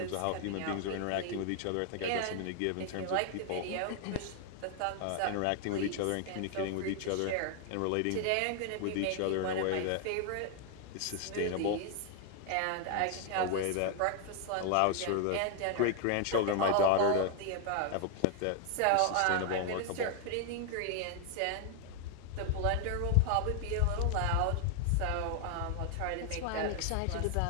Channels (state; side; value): different; both; correlation 0.00